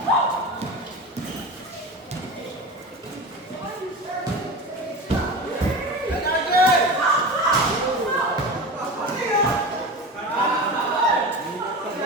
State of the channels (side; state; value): both; normal; correlation 0.29